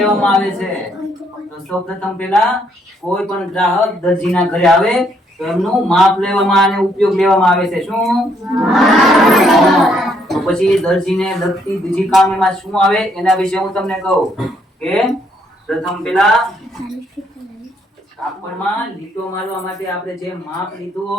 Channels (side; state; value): both; normal; correlation 0.70